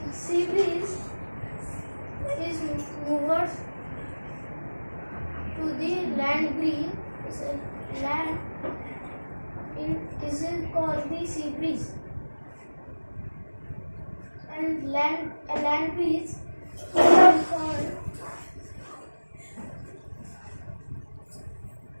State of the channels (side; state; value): both; inverted; correlation -1.00